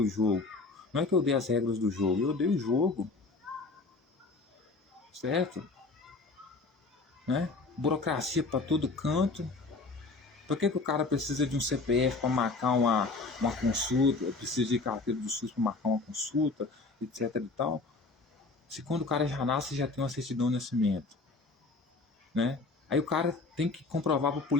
o jogo, não é que eu odeio as regras do jogo, eu odeio o jogo, certo? né? Burocracia para todo canto. Por que o cara precisa de um CPF para marcar uma consulta, precisa de carteira do SUS para marcar uma consulta, etc e tal? Se quando o cara já nasce, já tem uma certidão de nascimento, né? Aí o cara tem que comprovar para o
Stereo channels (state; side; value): quieter; right; 3.7 dB